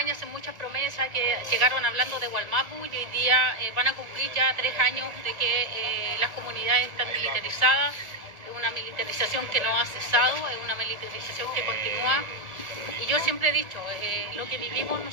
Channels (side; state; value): left; late; 1.7 ms